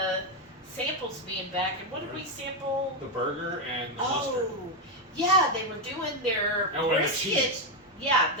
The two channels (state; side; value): normal; both; correlation 0.06